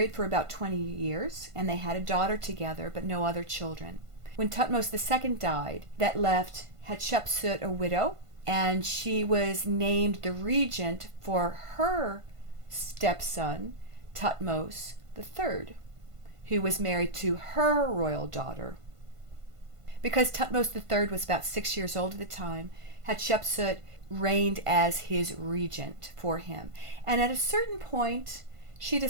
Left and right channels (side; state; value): left; late; 1.5 ms